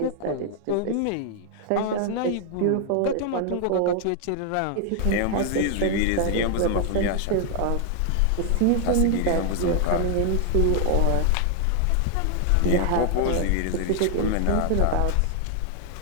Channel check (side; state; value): both; different; correlation 0.00